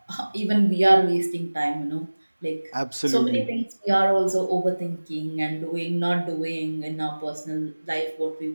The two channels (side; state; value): both; inverted; correlation -1.00